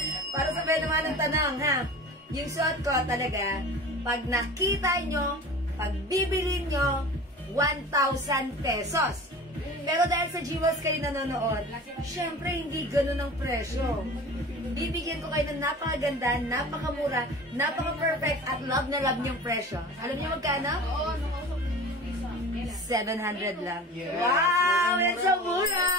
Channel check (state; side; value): normal; both; correlation 0.38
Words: Para sabihin naman ang tanong, ha? Yung suot ko talaga, pag nakita nyo, pag bibili nyo, 1,000 pesos. Pero dahil sa Jewels kayo nanonood, syempre hindi ganun ang presyo. Bibigyan ko kayo ng napakaganda, napakamura, napaka-perfect at love na love niyong presyo. Alam niyo magkano? 700 lang. Wow! That's so mura!